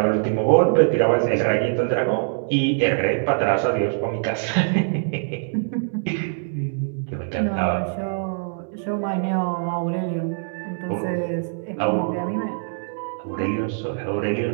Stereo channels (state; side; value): silent; left; digital silence